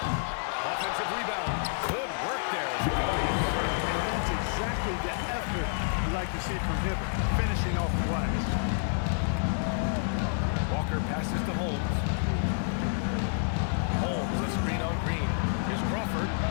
Offensive rebound. Good work there as it goes. And that's exactly the effort you like to see from Hibbert, finishing off the glass. Walker passes to Holmes. Holmes, a screen on Green. Here's Crawford.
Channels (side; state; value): right; silent; digital silence